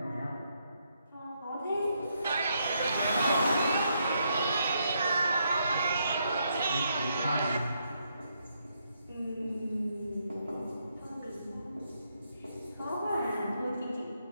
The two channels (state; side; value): inverted; both; correlation -0.77